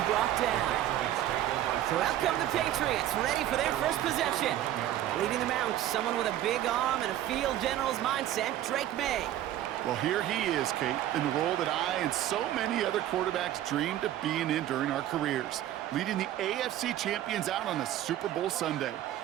brought down. So out come the Patriots, ready for their first possession. Leading them out, someone with a big arm and a field general's mindset, Drake May. Well, here he is, Kate, in the role that I and so many other quarterbacks dreamed of being in during our careers, leading the AFC champions out on a Super Bowl Sunday.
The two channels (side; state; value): left; quieter; 12.7 dB